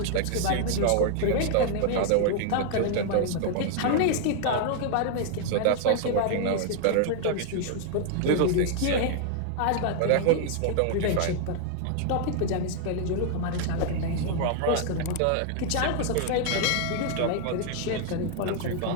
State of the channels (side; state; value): both; different; correlation 0.00